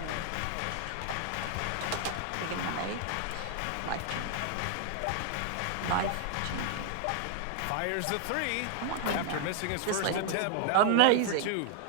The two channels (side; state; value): both; different; correlation 0.00